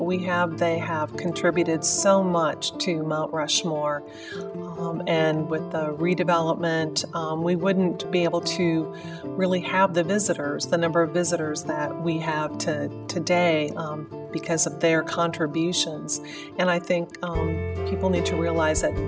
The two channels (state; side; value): identical; both; correlation 1.00